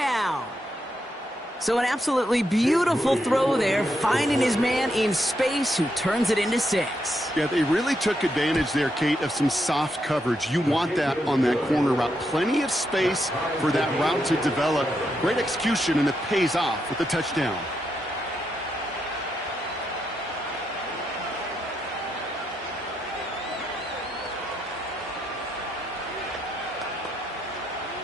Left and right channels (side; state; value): both; normal; correlation 0.81